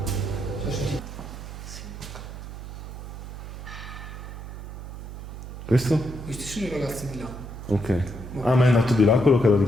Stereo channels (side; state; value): right; noise; hum, 10 dB below the sound